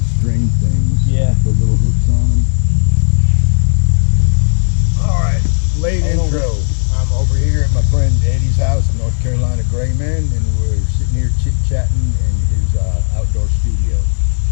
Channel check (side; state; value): right; silent; digital silence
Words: string things. Yeah. With the little hooks on them. Alright, late intro. I'm over here at my friend Eddie's house in North Carolina, Grayman, and we're sitting here chit-chatting in his outdoor studio.